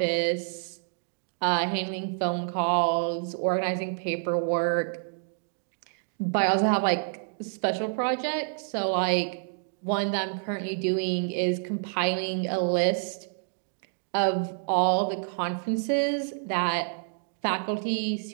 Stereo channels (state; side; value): silent; left; digital silence